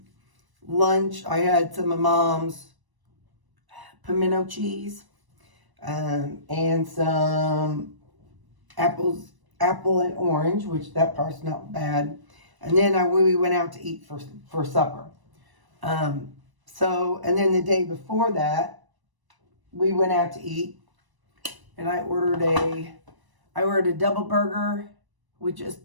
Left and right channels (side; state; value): left; late; 1.0 ms